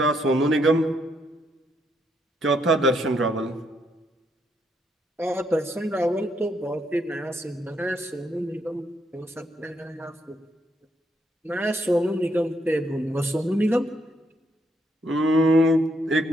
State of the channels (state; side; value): normal; both; correlation 0.75